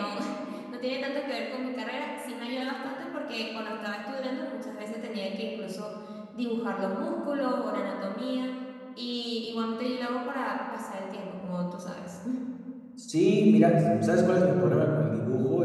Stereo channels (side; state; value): both; identical; correlation 1.00